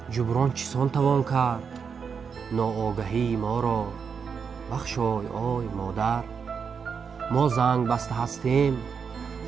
جبران چسان توان کرد، ناآگهی ما را بخشای آی مادر. ما زنگ بسته هستیم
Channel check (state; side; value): quieter; left; 6.2 dB